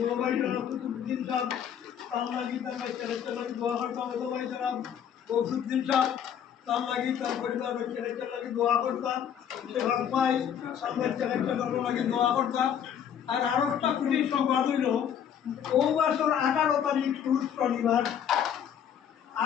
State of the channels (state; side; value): quieter; right; 8.8 dB